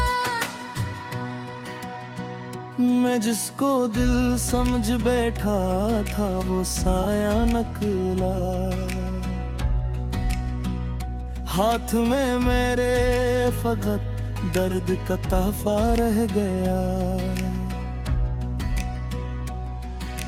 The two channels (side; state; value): both; identical; correlation 1.00